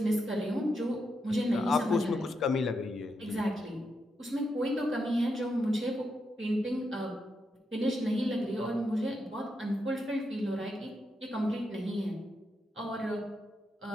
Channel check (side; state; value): both; normal; correlation 0.84